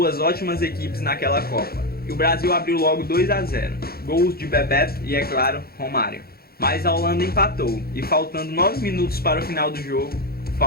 ótimas equipes naquela Copa. E o Brasil abriu logo 2-0, gols de Bebeto e, é claro, Romário. Mas a Holanda empatou e, faltando 9 minutos para o final do jogo,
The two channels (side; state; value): right; late; 0.44 ms